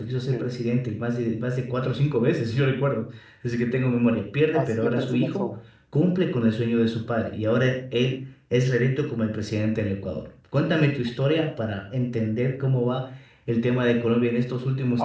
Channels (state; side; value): identical; both; correlation 1.00